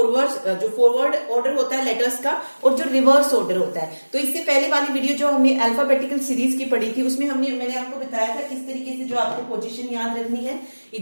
फॉरवर्ड ऑर्डर होता है लेटर्स का, और जो रिवर्स ऑर्डर होता है। तो इससे पहले वाली वीडियो जो हमने अल्फाबेटिकल सीरीज की पढ़ी थी, उसमें मैंने आपको बताया था किस तरीके से जो आपको पोजीशन याद रखनी है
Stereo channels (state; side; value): inverted; both; correlation -1.00